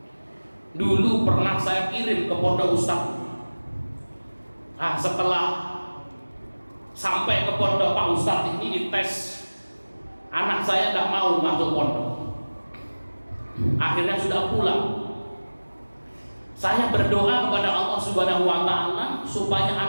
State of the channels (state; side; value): inverted; both; correlation -1.00